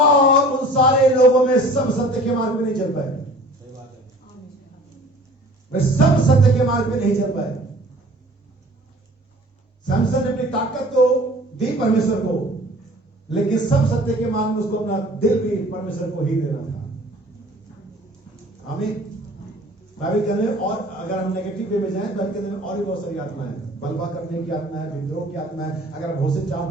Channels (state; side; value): normal; both; correlation 0.48